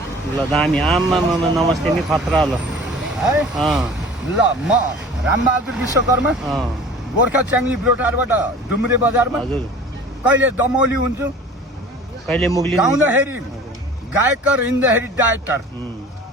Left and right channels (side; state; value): both; normal; correlation 0.43